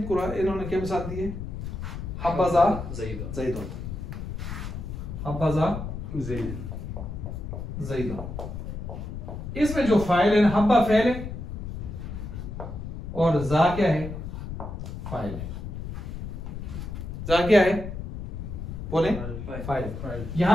कुरान इन्होंने क्या मिसाल दी है? हब्बज़ा ज़ैदुन, हब्बज़ा ज़ैदुन। इसमें जो फाइल है ना, हब्बा फेल है और जा क्या है? फाइल है। जा क्या है? बोले फाइल।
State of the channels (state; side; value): noise; left; rumble, 7 dB below the sound